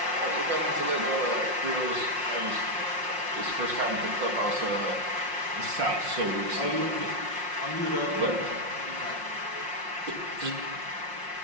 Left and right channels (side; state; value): left; late; 5.6 ms